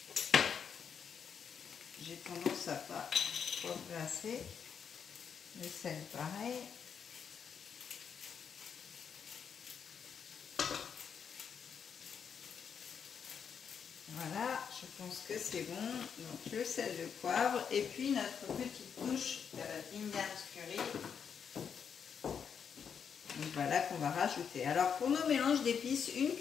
j'ai tendance à pas poivrer assez. Le sel pareil. Voilà, je pense que c'est bon. Donc le sel, le poivre et puis notre petite touche d'Indian curry. Donc voilà qu'on va rajouter. Alors pour nos mélanges d'épices, une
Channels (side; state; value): right; quieter; 7.1 dB